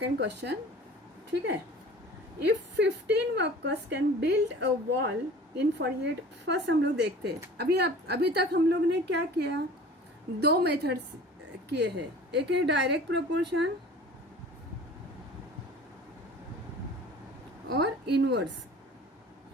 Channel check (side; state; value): both; normal; correlation 0.43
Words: क्वेश्चन, ठीक है। If 15 workers can build a wall in 48, first हम लोग देखते हैं। अभी तक हम लोग ने क्या किया, दो मेथड्स किए हैं। एक है डायरेक्ट प्रोपोर्शन और इनवर्स,